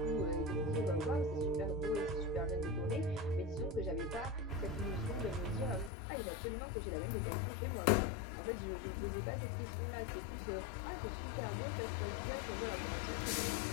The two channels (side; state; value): right; drops out; at 5.9 s